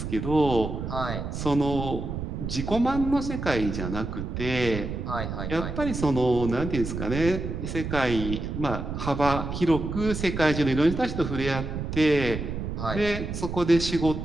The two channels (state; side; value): noise; right; rumble, 5 dB below the sound